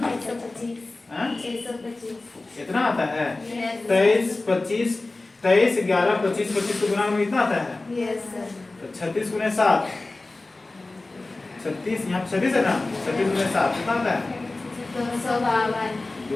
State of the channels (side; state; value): right; quieter; 3.2 dB